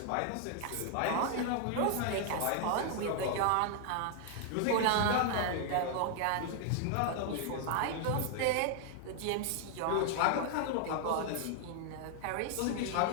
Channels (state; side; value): different; both; correlation 0.00